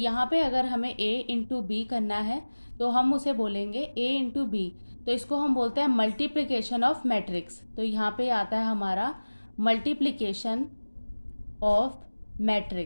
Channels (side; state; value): both; inverted; correlation -1.00